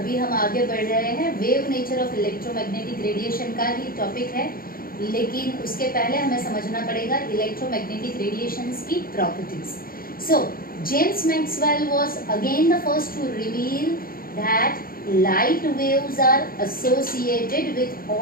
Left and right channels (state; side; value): late; right; 0.42 ms